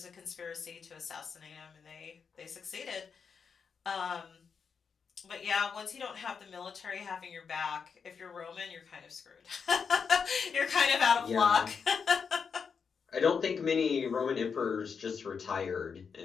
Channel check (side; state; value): right; quieter; 6.1 dB